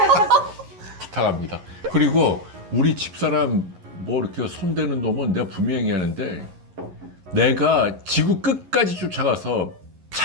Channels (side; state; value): left; late; 11 ms